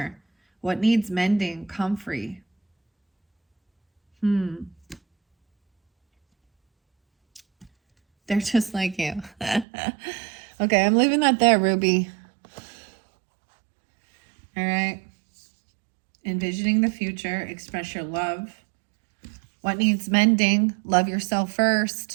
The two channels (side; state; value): left; drops out; at 9.7 s